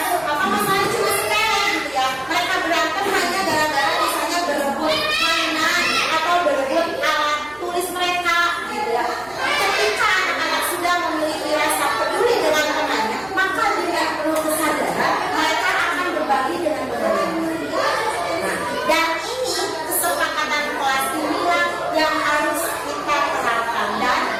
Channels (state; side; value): noise; right; hum, 27 dB below the sound